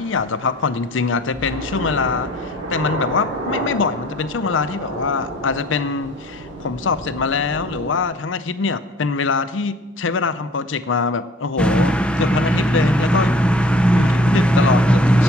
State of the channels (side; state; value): both; normal; correlation 0.50